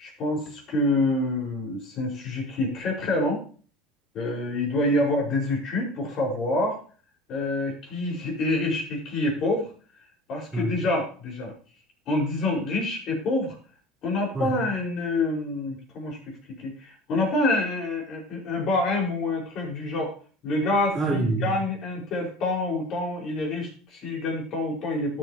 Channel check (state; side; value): normal; both; correlation 0.39